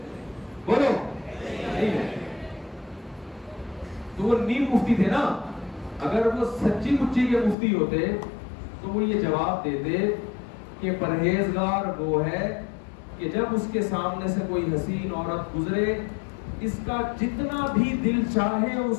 بولو نہیں ہے. تو وہ نیم مفتی تھے نا. اگر وہ سچی مچی کے مفتی ہوتے تو وہ یہ جواب دیتے کہ پرہیزگار وہ ہے کہ جب اس کے سامنے سے کوئی حسین عورت گزرے اس کا جتنا بھی دل چاہے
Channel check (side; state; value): right; drops out; at 7.6 s